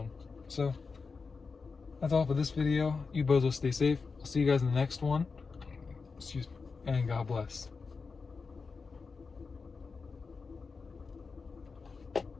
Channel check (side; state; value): right; quieter; 4.7 dB